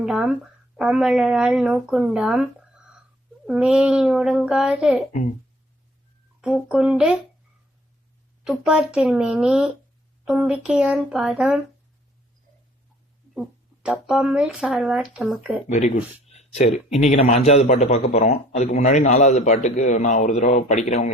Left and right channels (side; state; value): both; normal; correlation 0.56